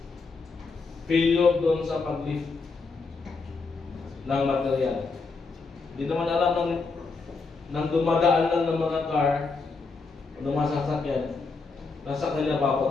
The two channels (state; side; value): quieter; right; 4.2 dB